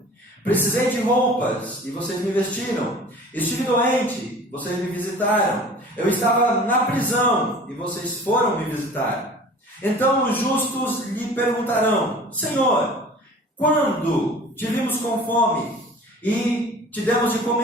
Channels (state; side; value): normal; both; correlation 0.44